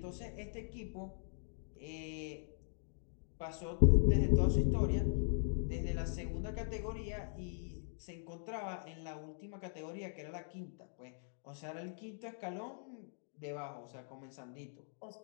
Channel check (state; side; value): silent; right; digital silence